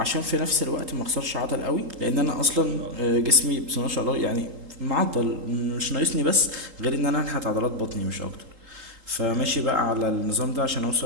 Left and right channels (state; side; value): late; left; 3.8 ms